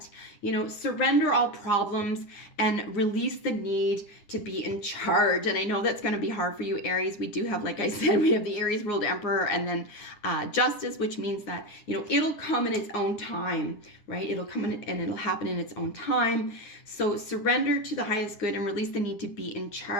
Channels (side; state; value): right; late; 9.9 ms